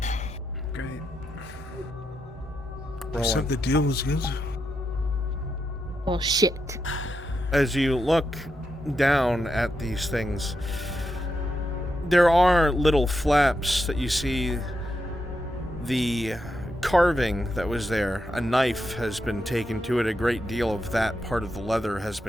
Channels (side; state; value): both; normal; correlation 0.85